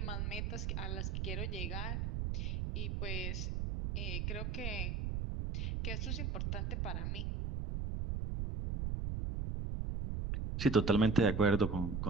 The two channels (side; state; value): right; noise; rumble, 1 dB below the sound